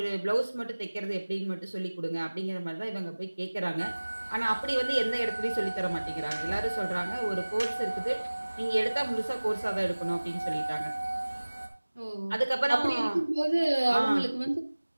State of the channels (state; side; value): inverted; both; correlation -1.00